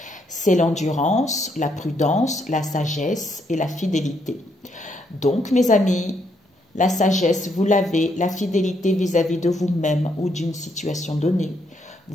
C'est l'endurance, la prudence, la sagesse et la fidélité. Donc, mes amis, la sagesse, vous l'avez, la fidélité vis-à-vis de vous-même ou d'une situation donnée.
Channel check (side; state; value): both; normal; correlation 0.75